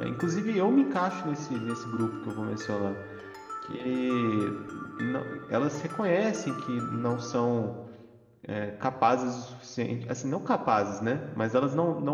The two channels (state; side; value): identical; both; correlation 1.00